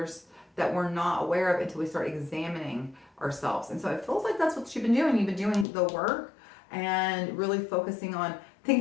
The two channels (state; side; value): drops out; right; at 5.7 s